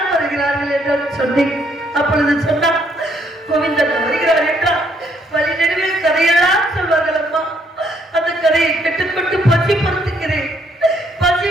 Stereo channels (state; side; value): normal; both; correlation 0.70